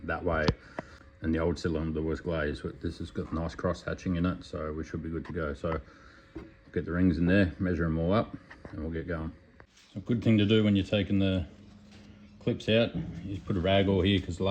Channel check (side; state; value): both; identical; correlation 1.00